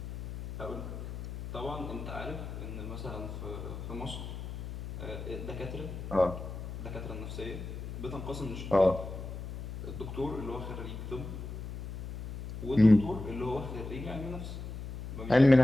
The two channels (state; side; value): noise; left; hum, 8 dB below the sound